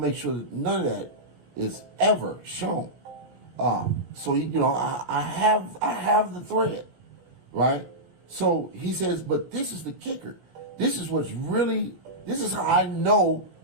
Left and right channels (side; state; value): left; late; 17 ms